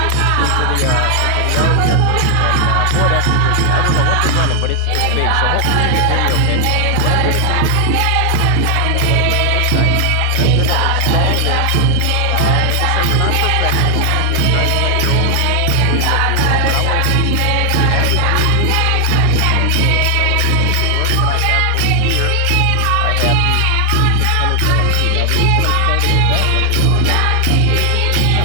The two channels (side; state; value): both; different; correlation 0.00